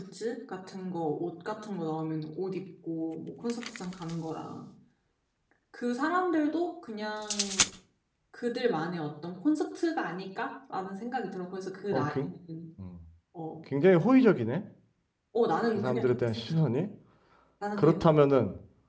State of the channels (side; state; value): both; identical; correlation 1.00